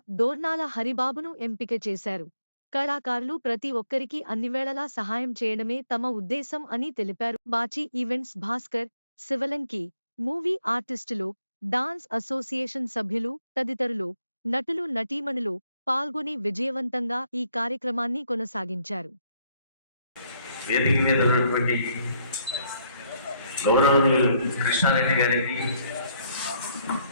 డోర్నాల హరిబాబును ఎంపిక చేశారు. కళాకారులు ప్రతి ఒక్కరికి అన్నివేళలా సహాయం చేయడమే తమ ఉద్దేశం అని తెలిపారు. బాచి ఈవెంట్స్ భాస్కర్, శివలంకి, మూవీ ఆర్టిస్టులు, డాన్స్ అసోసియేషన్ సభ్యులు తదితరులు, నటులు నటీమణులు పాల్గొని విజయవంతంగా ఈ కార్యక్రమాన్ని కొనసాగించారు. వేదిక మీద ఉన్నటువంటి గౌరవనీయులు కృష్ణారెడ్డి గారికి,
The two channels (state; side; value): inverted; both; correlation -0.71